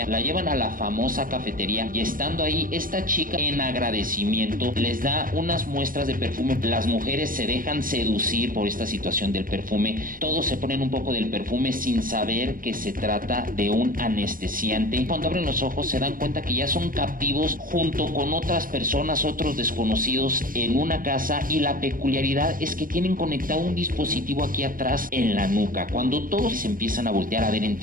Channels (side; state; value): left; late; 0.40 ms